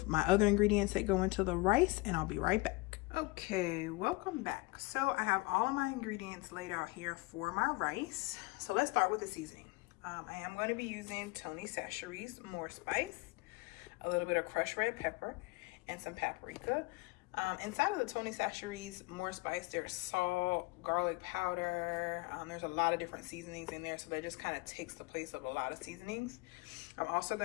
my other ingredients that go into the rice, and I'll be right back. Okay, welcome back. So I have all of my ingredients laid out here for my rice. So let's start with the seasoning. I am going to be using Tony Chachere's More Spice, a little bit of crushed red pepper, and some paprika. Inside of the Tony Chachere's More Spice, there's salt, garlic powder. There's a lot of different seasonings in there, so that just kind of takes the place of a lot of seasonings. I'm also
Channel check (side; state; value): right; quieter; 24.1 dB